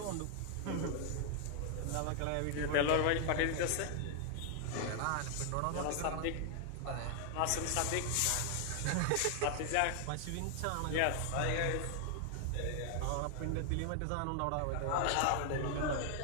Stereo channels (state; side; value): different; both; correlation 0.00